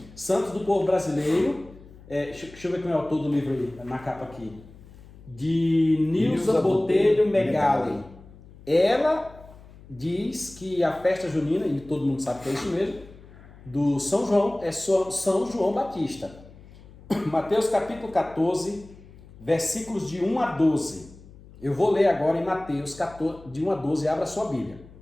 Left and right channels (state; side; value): noise; left; hum, 21 dB below the sound